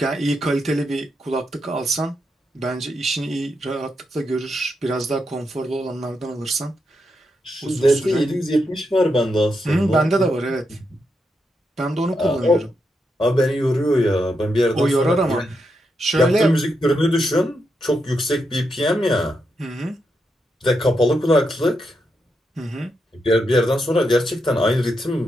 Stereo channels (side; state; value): both; normal; correlation 0.83